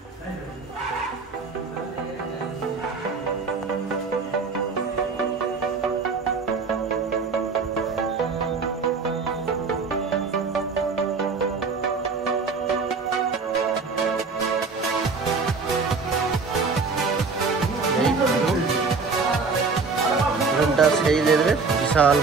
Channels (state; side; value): quieter; left; 4.6 dB